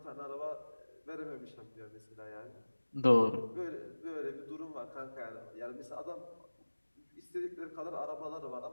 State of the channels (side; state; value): both; inverted; correlation -1.00